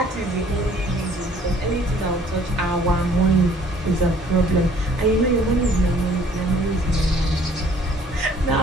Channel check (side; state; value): both; normal; correlation 0.57